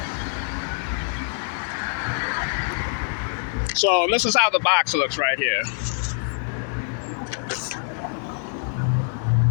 So this is how the box looks right here.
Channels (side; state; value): right; silent; 62 dB below the other